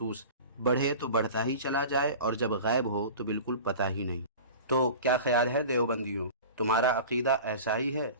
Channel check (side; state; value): both; inverted; correlation -0.37